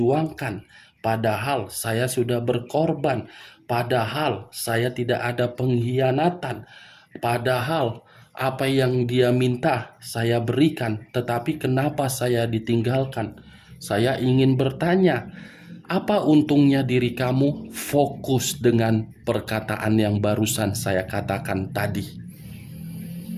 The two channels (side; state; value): both; identical; correlation 1.00